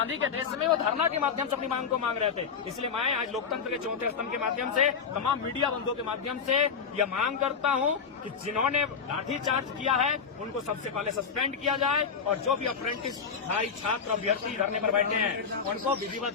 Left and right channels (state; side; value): quieter; right; 6.2 dB